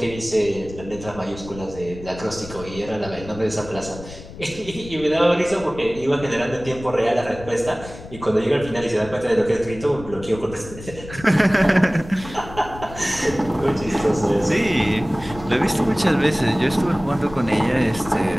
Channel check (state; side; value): noise; left; rumble, 15 dB below the sound